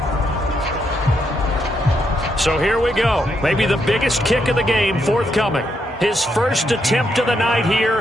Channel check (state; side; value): normal; both; correlation 0.78